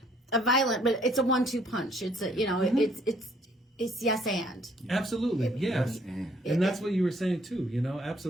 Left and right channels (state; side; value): normal; both; correlation 0.63